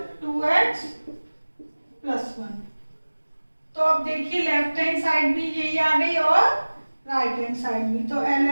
2x प्लस 1। तो अब देखिए लेफ्ट हैंड साइड भी यही आ गई और राइट हैंड साइड भी, तो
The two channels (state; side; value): inverted; both; correlation -1.00